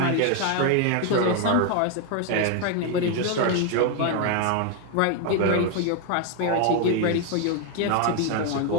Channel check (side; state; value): both; different; correlation 0.01